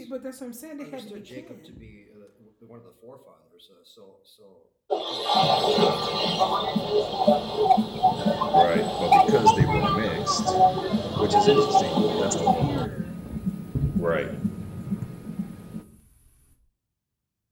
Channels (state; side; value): identical; both; correlation 1.00